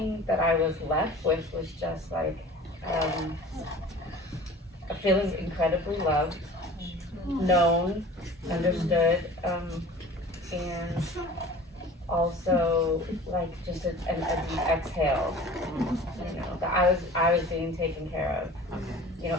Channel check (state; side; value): normal; both; correlation 0.43